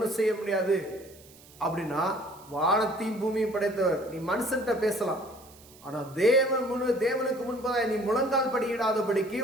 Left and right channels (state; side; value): noise; right; hiss, 23 dB below the sound